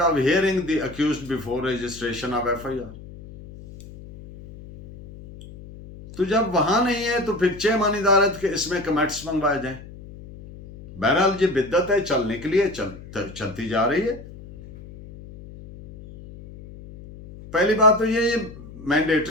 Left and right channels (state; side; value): noise; left; hum, 16 dB below the sound